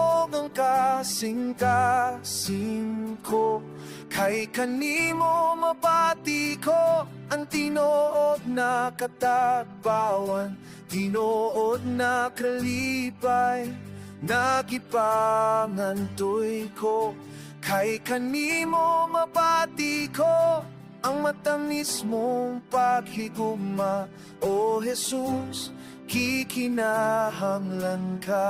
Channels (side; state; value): both; identical; correlation 1.00